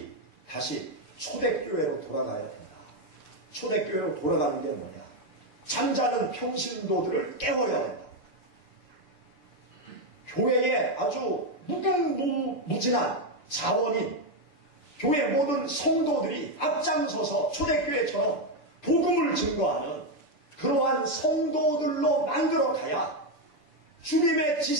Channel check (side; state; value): right; late; 6.8 ms